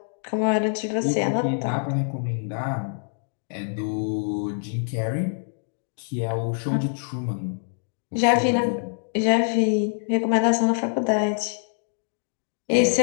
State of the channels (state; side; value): silent; right; digital silence